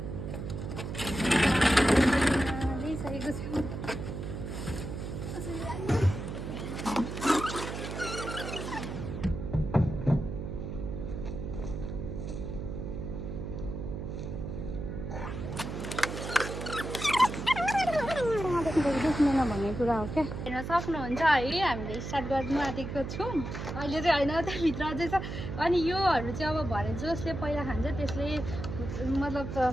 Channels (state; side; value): noise; right; hum, 6 dB below the sound